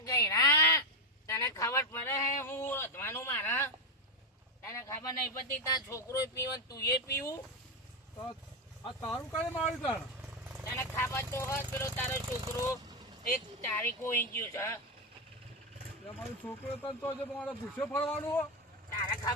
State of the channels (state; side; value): normal; both; correlation 0.09